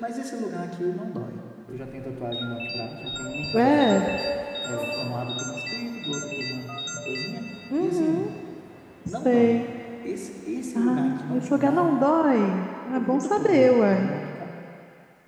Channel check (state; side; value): identical; both; correlation 1.00